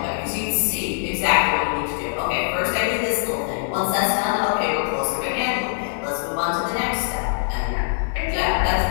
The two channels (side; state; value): right; silent; digital silence